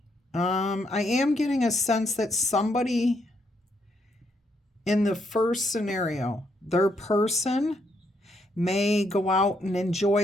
I am getting a sense that somebody in the first scenario, their person may go out and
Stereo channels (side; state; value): both; normal; correlation 0.75